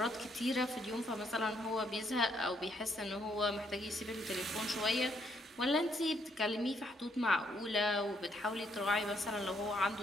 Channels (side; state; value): both; normal; correlation 0.72